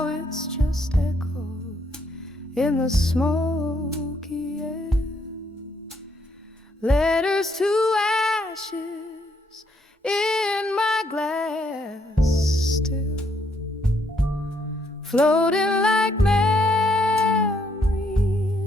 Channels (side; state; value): both; normal; correlation 0.72